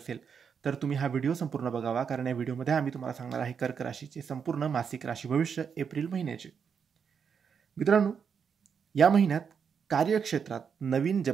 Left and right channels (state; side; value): quieter; left; 6.7 dB